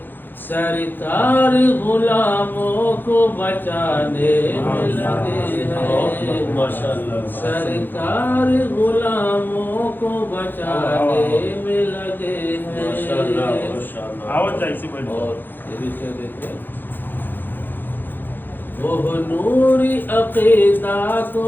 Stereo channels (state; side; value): late; right; 0.092 ms